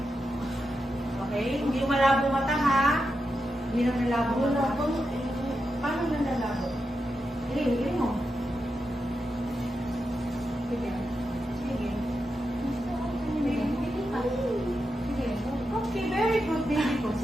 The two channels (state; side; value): normal; both; correlation 0.87